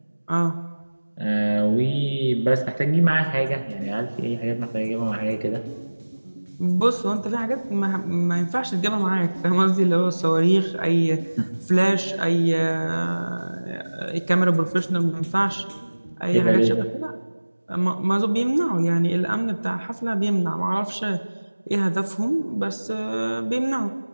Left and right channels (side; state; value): both; inverted; correlation -1.00